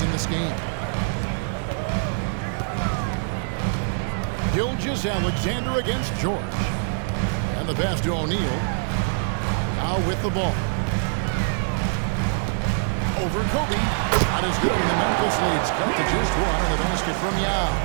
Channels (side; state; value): left; silent; 63 dB below the other